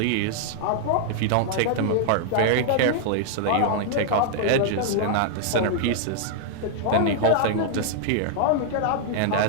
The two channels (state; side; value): different; both; correlation -0.01